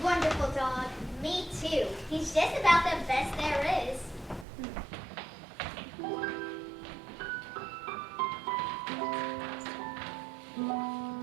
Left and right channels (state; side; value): drops out; left; at 4.5 s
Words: wonderful dog. Me too. He's just about the best there is.